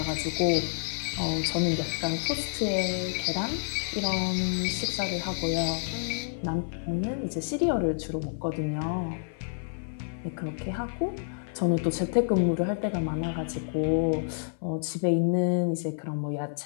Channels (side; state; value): right; silent; 59 dB below the other